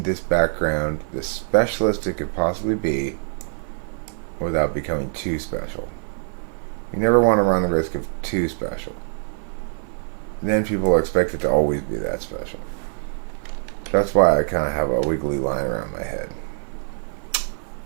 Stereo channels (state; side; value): silent; left; 56 dB below the other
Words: this background the specialist it could possibly be without becoming too special. You never want to run the risk of too special. Then people are expected to always be that special. That's why I kind of have a wiggly line around my head.